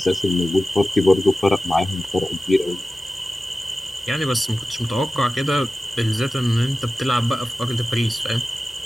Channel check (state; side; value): normal; both; correlation 0.94